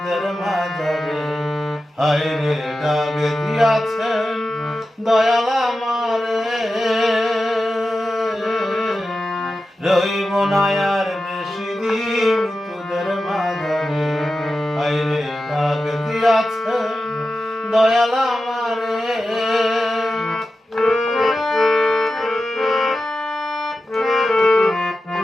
মাঝারে। হায় রে ডাক দিয়াছেন দয়াল আমারে, রইব না আর বেশি দিন তোদের মাঝারে। হায় রে ডাক দিয়াছেন দয়াল আমারে।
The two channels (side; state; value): both; normal; correlation 0.92